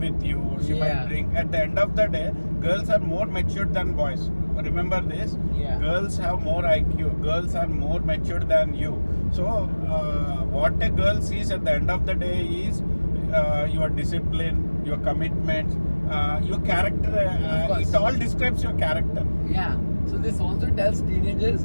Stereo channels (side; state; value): both; inverted; correlation -1.00